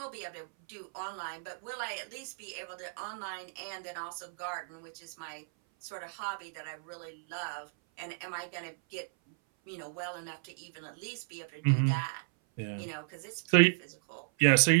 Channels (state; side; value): silent; left; 55 dB below the other